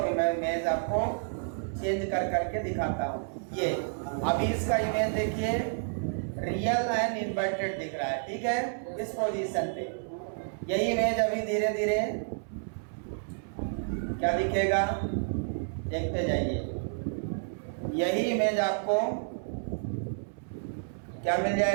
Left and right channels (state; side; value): silent; left; 58 dB below the other